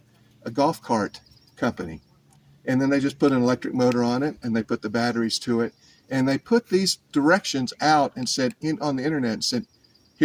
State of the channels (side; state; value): both; identical; correlation 1.00